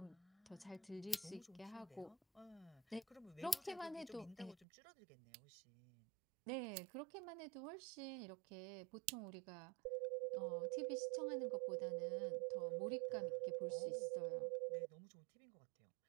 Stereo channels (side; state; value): left; drops out; at 4.7 s